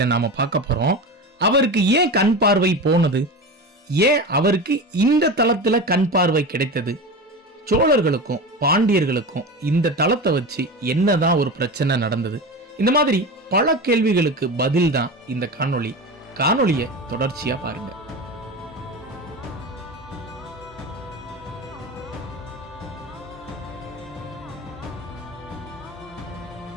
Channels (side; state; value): both; normal; correlation 0.26